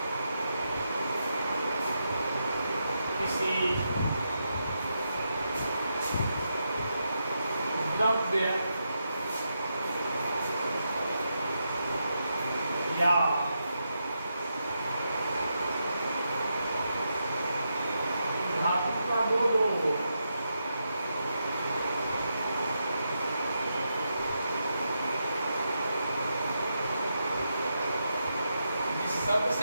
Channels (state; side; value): inverted; both; correlation -0.84